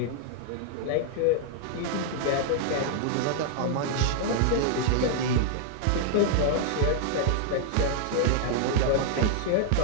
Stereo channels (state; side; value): different; both; correlation -0.01